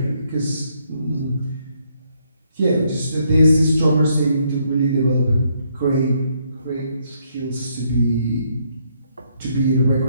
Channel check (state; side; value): inverted; both; correlation -0.72